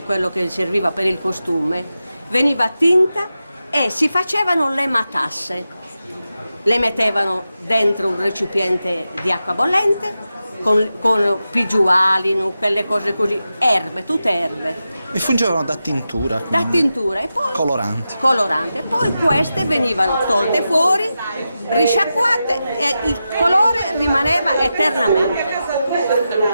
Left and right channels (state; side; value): inverted; both; correlation -0.91